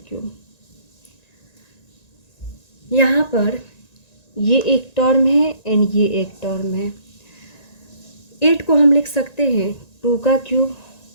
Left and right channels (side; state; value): right; late; 1.9 ms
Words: क्यूब। यहाँ पर ये एक टर्म है एंड ये एक टर्म है। 8 को हम लिख सकते हैं 2 का क्यूब